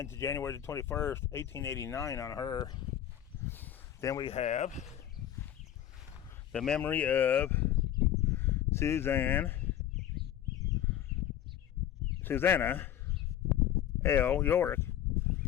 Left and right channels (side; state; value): right; quieter; 11.1 dB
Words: to January the 21st, 1889 on her. Then we have the memory of Susanna L. York,